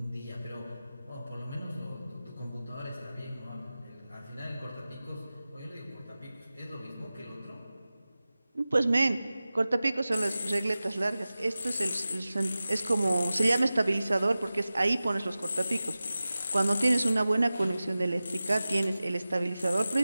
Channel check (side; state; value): both; inverted; correlation -0.95